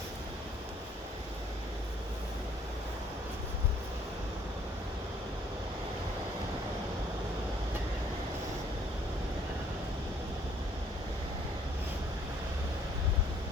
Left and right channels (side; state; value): both; normal; correlation 0.61